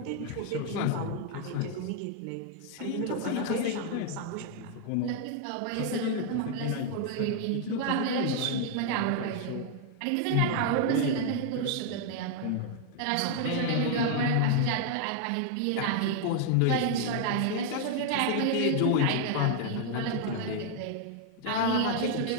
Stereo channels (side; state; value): both; different; correlation 0.00